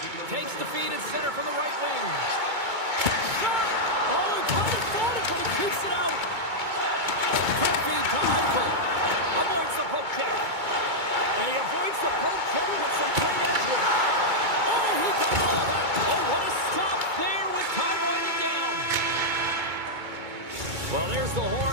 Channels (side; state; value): left; late; 2.2 ms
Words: Takes the feed at center from the right wing. Shot! Oh, he kind of fought it, but he keeps it out. And he avoids the poke check with some great edge work. Oh, he got all of that. Oh, what a stop there with time winding down. Well, there's the